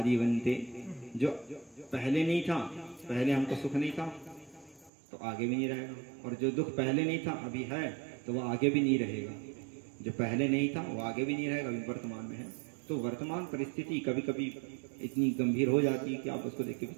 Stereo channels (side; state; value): left; drops out; at 4.9 s